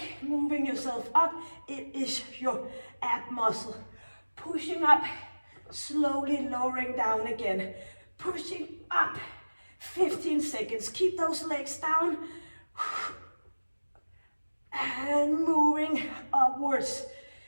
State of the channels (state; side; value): inverted; both; correlation -1.00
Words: moving yourself up. It is your ab muscle. Pushing up, slowly lowering down again. Pushing up. 15 seconds. Keep those legs down. And moving upwards.